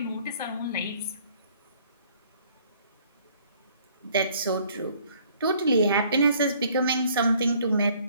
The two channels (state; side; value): inverted; both; correlation -0.60